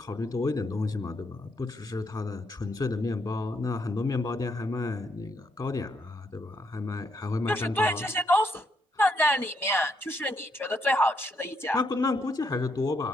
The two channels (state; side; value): normal; both; correlation 0.76